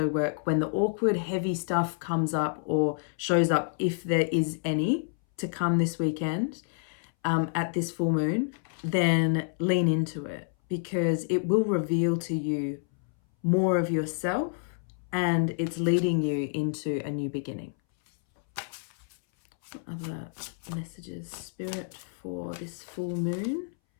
work when the awkward, heavy stuff comes up or shows up, if there is any to come this weekend at this full moon, then lean into it because it will reveal to you more of yourself and it's leading you into a new beginning. Other messages, Spirit, for this full moon?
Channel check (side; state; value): right; silent; 59 dB below the other